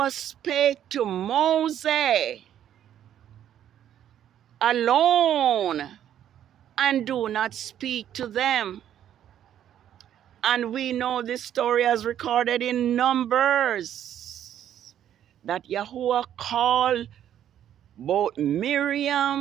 spake to Moses alone and do not speak to them. And we know this story as recorded in Numbers, that Yahuwah called both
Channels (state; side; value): quieter; left; 10.6 dB